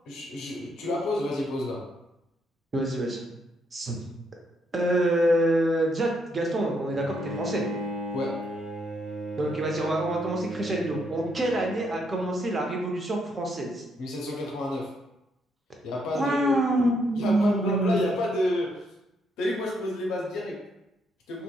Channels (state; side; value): normal; both; correlation 0.75